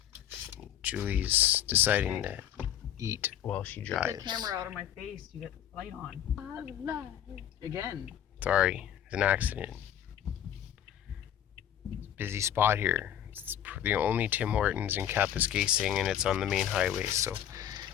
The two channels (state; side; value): quieter; right; 10.5 dB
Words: Julie's deciding to eat while she drives. Get the camera out of my face. You get the light on. Again. Sorry, it's an accident. Busy spot here. It's the only Tim Hortons in Kapuskasing, and it's on the main highway, so